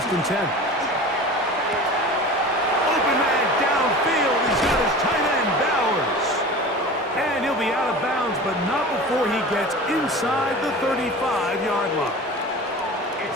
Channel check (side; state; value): both; normal; correlation 0.36